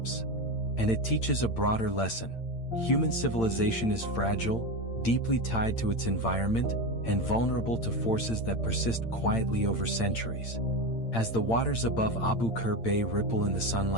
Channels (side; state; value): right; late; 8.8 ms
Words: And it teaches a broader lesson. Human civilization is fragile, deeply tied to its environment, and vulnerable to forces that persist quietly over centuries. As the waters above Abu Qir Bay ripple in the